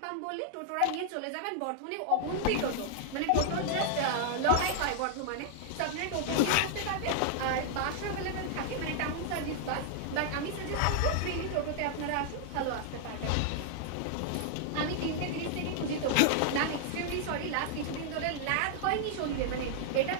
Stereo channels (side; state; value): both; different; correlation -0.01